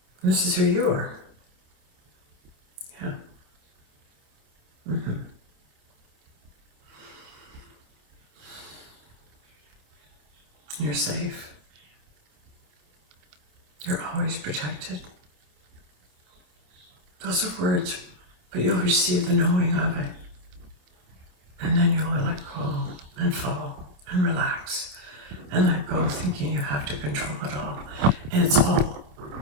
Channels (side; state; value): left; late; 28 ms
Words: And this is who you are. Yeah. You're safe. You're always protected. Those are words, but you'll receive the knowing of it. And then you'll let go and fall and relax and let go thinking you have to control it all. And it's